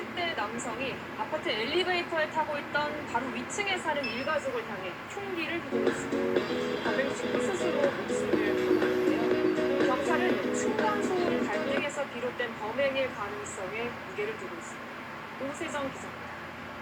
남성이 아파트 엘리베이터에 타고 있던 바로 위층에 사는 일가족을 향해 흉기를 휘둘렀습니다. 범행 직후 스스로 목숨을 끊었는데요. 경찰은 층간소음 갈등에서 비롯된 범행일 가능성에 무게를 두고 있습니다. 오세정 기자입니다.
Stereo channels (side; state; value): both; identical; correlation 1.00